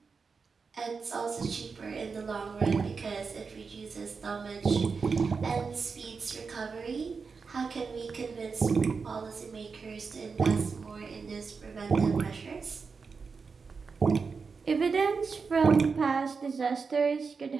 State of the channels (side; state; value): left; quieter; 5.1 dB